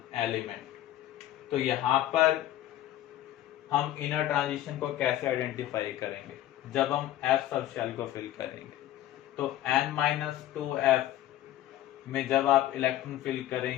element. तो यहाँ पर हम इनर ट्रांजिशन को कैसे आइडेंटिफाई करेंगे, जब हम F सब शेल को फिल करेंगे। तो N-2F में जब आप इलेक्ट्रॉन फिल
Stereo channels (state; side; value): quieter; right; 13.6 dB